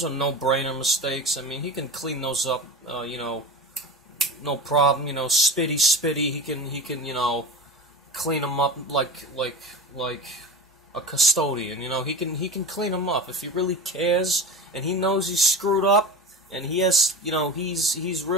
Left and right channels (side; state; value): both; normal; correlation 0.31